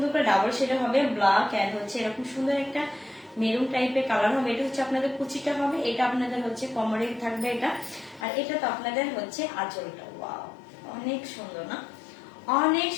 করে ডাবল শেড হবে, ব্ল্যাক এন্ড হচ্ছে এরকম সুন্দর একটা মেরুন টাইপের কালার হবে। এটা হচ্ছে আপনাদের কুচিটা হবে, এটা আপনাদের হচ্ছে কোমরে থাকবে এটা, আর এটা তো আপনাদের হচ্ছে আঁচলটা। ওয়াও অনেক সুন্দর না, অনেক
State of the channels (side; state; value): right; drops out; at 8.2 s